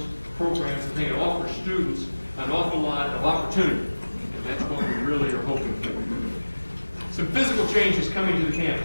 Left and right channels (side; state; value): both; inverted; correlation -1.00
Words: programs. I think it offers students an awful lot of opportunity, and that's what we really are hoping for. Some physical changes coming to the